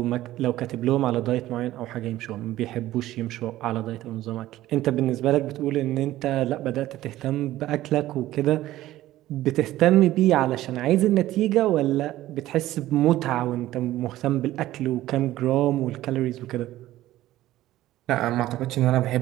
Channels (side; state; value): left; quieter; 15.1 dB